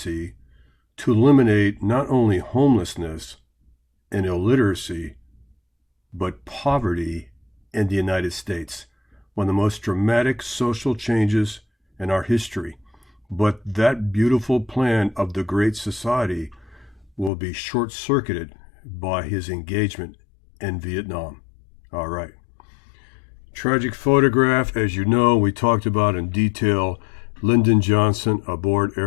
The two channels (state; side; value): drops out; right; at 17.3 s